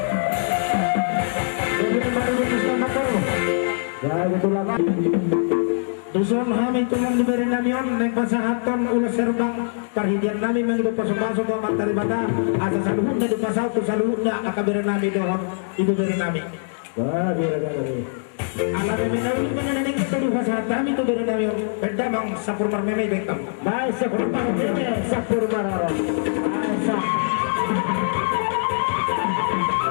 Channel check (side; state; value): right; silent; digital silence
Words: Ya, betul lah, Pak. Dusun kami tulang diberi namion neng pasahaton ulas serbang perhidian nami menghidup pasok-pasok ke materi bata asa saluhutnya di pasal tu saluhutnya akaberi nami dohon ibu beri nami Wah, biar kami. ala meme nami meneneng kita di pasahat kami tu beri namion beda bang sapur marmeme bekam Baik, sepuluh ini sapur marah. Asa.